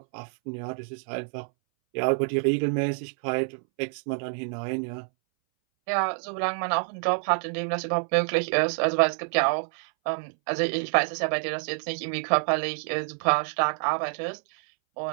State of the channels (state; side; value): silent; left; 60 dB below the other